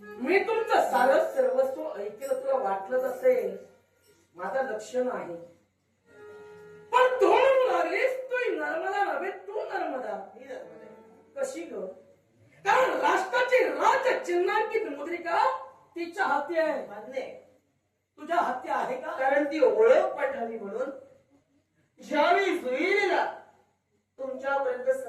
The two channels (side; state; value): both; identical; correlation 1.00